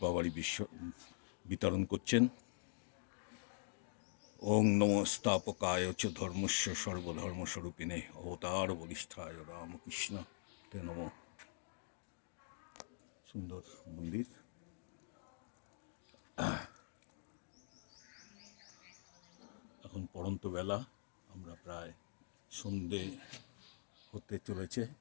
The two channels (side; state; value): right; silent; digital silence